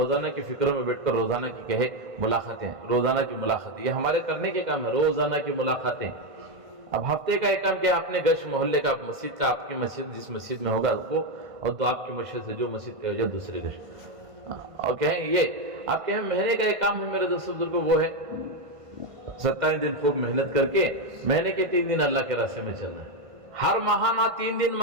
کی فکروں میں بیٹھ کر روزانہ کی کہے ملاقاتیں، روزانہ کی ملاقاتیں، یہ ہمارے کرنے کے کام ہے. روزانہ کی ملاقاتیں. اب ہفتے کا ایک کام کیا، اپنے گشت محلے کا، مسجد کا، آپ کی مسجد جس مسجد میں ہوگا وہ، اور تو آپ کی مسجد سے جو مسجد پہ ہو جائے دوسرے گشت. اور کہیں یہ آپ کہیں مہینے کا ایک کام ہے میرے دوستوں بزرگوں، وہ ہے 27 دن خوب محنت کر کے مہینے کے 3 دن اللہ کے راستے میں چلنا ہے. ہر ماہانہ 3 دن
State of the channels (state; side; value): late; left; 1.5 ms